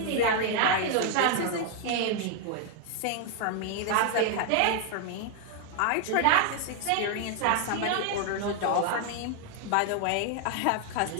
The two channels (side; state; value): both; different; correlation 0.00